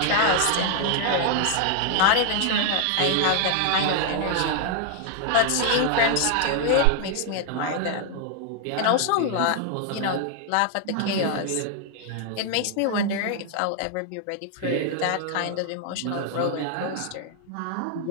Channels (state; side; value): different; both; correlation 0.00